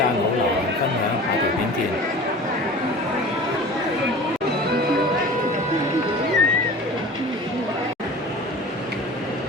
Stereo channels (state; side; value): normal; both; correlation 0.39